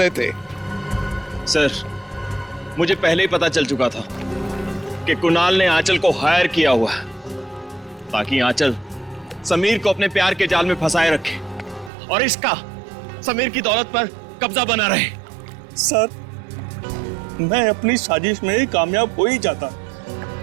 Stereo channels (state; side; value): drops out; left; at 11.9 s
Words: थे? सर, मुझे पहले ही पता चल चुका था कि कुणाल ने आंचल को हायर किया हुआ है ताकि आंचल समीर को अपने प्यार के जाल में फंसाए रखे और इसका समीर की दौलत पर कब्जा बना रहे। सर, मैं अपनी साजिश में कामयाब हो ही जाता,